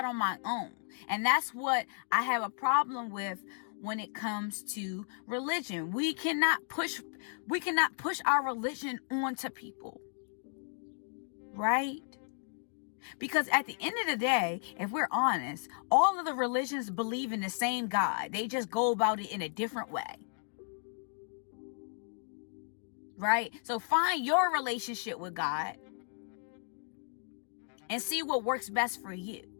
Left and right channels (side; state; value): right; silent; digital silence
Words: on my own. And that's what I have a problem with when it comes to religion. We cannot push our religion onto people, right? Because at the end of the day, if we're honest, all of the religions believe in the same God. They just go about it in a different way. Right? So find your relationship with God and see what works best for you.